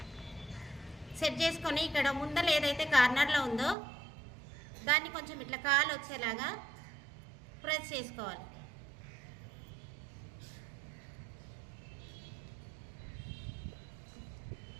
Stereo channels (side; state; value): left; drops out; at 3.8 s